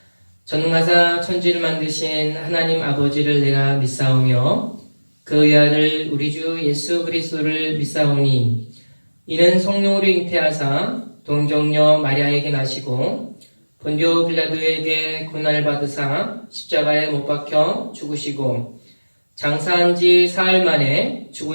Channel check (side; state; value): both; inverted; correlation -1.00